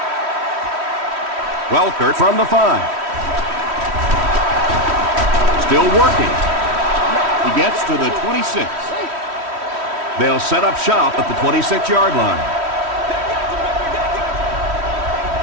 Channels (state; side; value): late; left; 3.1 ms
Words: Welker from the 5. Still working. He gets to the 26. They'll set up shop at the 26-yard line.